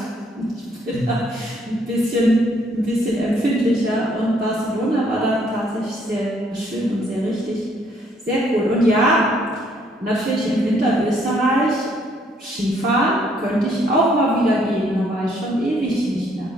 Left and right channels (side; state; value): both; normal; correlation 0.67